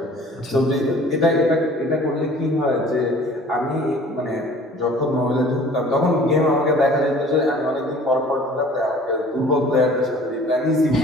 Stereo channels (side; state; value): both; normal; correlation 0.49